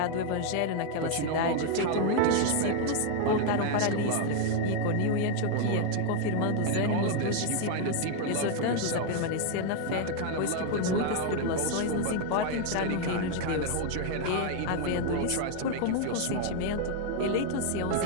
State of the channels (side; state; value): both; different; correlation 0.00